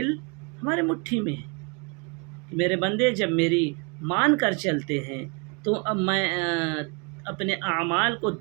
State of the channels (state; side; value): quieter; left; 33.3 dB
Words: ہمارے مٹھی میں ہیں۔ میرے بندے جب میری مان کر چلتے ہیں تو اب میں اپنے اعمال کو